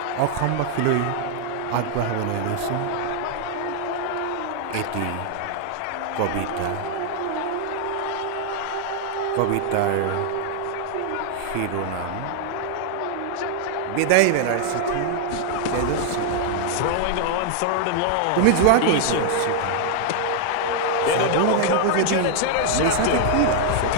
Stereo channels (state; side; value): different; both; correlation 0.00